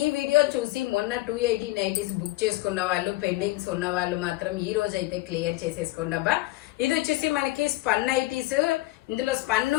ఈ వీడియో చూసి మొన్న 280 నైటీస్ బుక్ చేసుకున్న వాళ్ళు, పెండింగ్స్ ఉన్న వాళ్ళు మాత్రం ఈ రోజు అయితే క్లియర్ చేసేసుకోండి అబ్బా. ఇది వచ్చేసి మనకి స్పన్ నైటీస్. ఇందులో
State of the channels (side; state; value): right; quieter; 19.0 dB